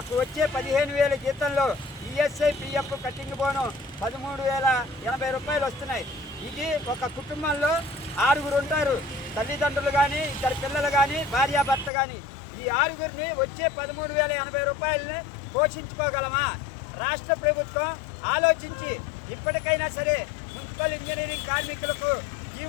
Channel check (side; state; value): right; drops out; at 11.9 s